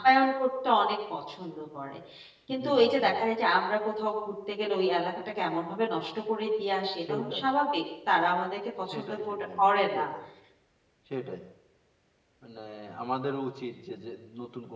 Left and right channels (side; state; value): both; identical; correlation 1.00